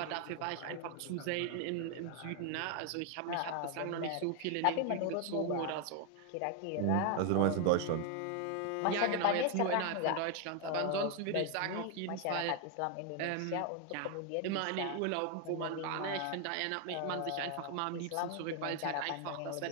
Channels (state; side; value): different; both; correlation 0.01